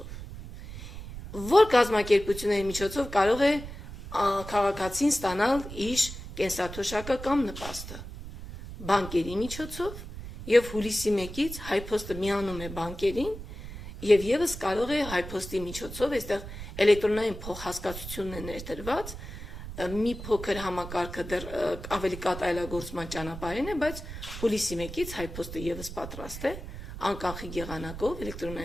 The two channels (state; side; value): noise; right; rumble, 11 dB below the sound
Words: Որ կազմակերպությունների միջոցով կարող է քաղաքացին ստանալ իր կենսաթոշակը կամ նպաստը։ Բանկերի միջոցով եւ հուլիսի 1-ից հայփոստը միանում է բանկերին եւ եւս կարող է հայփոստի միջոցով, այստեղ էլեկտրոնային փոխհասկացությունն է ներդրված, մի փոքր համակարգը դեռ ավելի կատարելագործման ճանապարհին է, բայց հուլիսի 1-ից հայփոստը եւս պատրաստ է անկանխիկ եղանակով